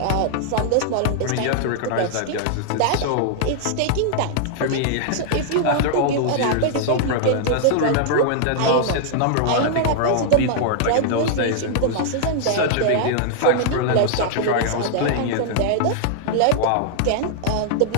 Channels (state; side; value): different; both; correlation -0.01